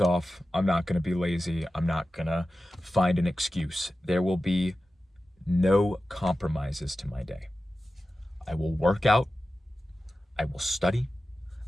off. I'm not going to be lazy. I'm not going to find an excuse. There will be no compromises to my day. I will work out. I will study.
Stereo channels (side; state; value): both; normal; correlation 0.94